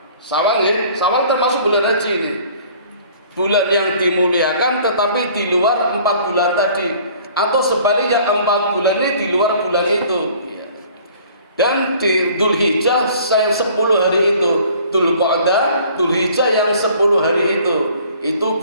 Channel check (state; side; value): inverted; both; correlation -0.53